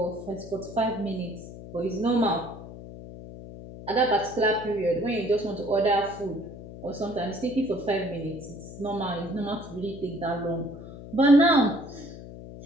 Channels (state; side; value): noise; left; hum, 13 dB below the sound